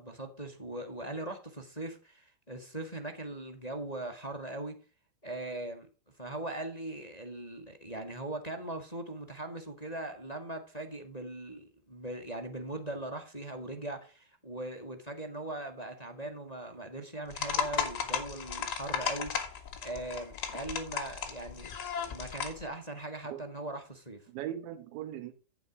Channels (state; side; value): late; right; 1.9 ms